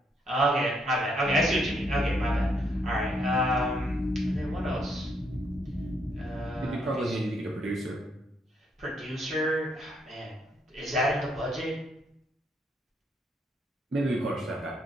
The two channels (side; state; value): both; normal; correlation 0.73